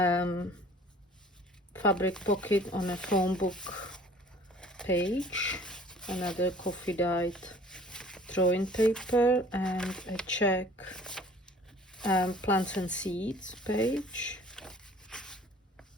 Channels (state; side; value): normal; both; correlation 0.51